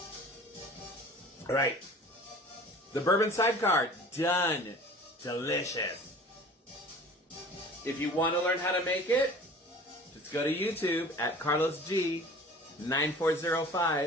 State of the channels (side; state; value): both; normal; correlation 0.44